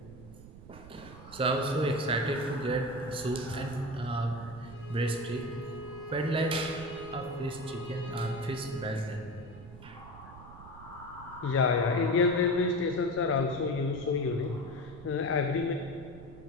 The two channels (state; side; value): noise; right; rumble, 17 dB below the sound